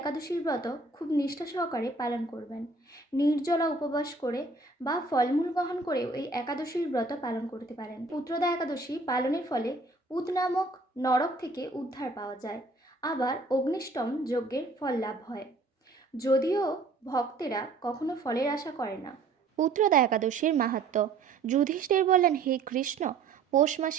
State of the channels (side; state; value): left; quieter; 3.7 dB